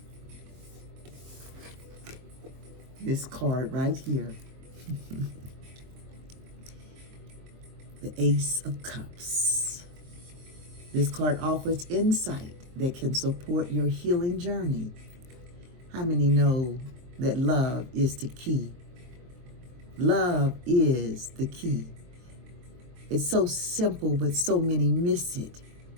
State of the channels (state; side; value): late; left; 23 ms